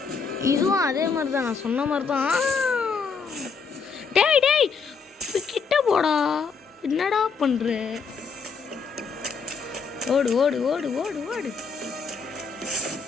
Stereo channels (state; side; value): quieter; right; 5.4 dB